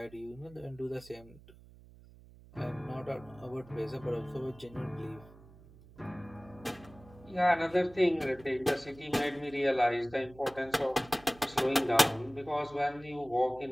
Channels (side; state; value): right; noise; hum, 22 dB below the sound